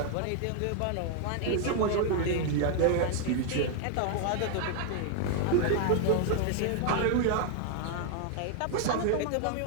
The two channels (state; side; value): different; both; correlation 0.00